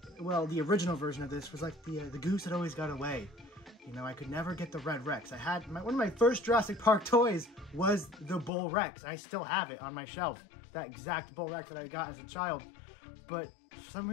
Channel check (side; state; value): right; drops out; at 8.5 s